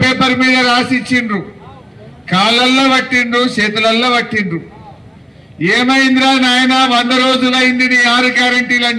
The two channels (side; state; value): both; identical; correlation 1.00